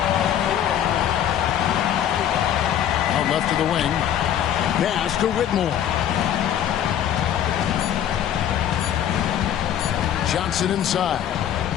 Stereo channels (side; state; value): right; quieter; 10.2 dB